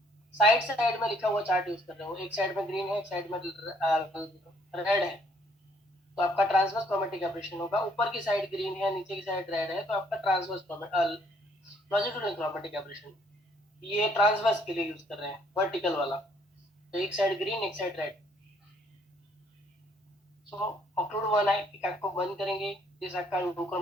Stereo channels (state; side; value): normal; both; correlation 0.65